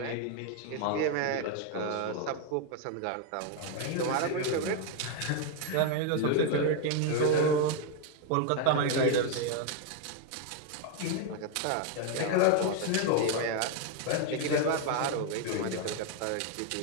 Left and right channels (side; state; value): both; different; correlation 0.01